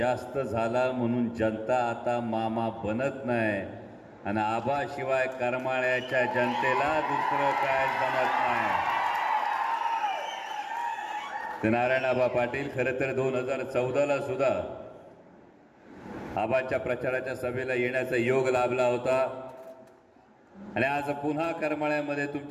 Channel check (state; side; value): identical; both; correlation 1.00